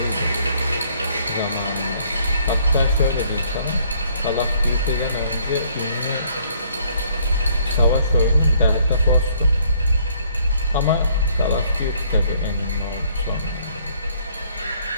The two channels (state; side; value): inverted; both; correlation -0.64